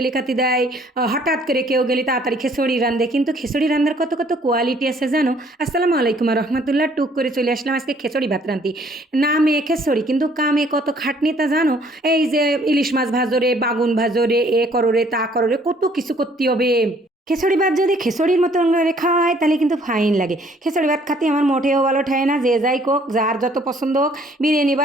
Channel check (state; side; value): normal; both; correlation 0.61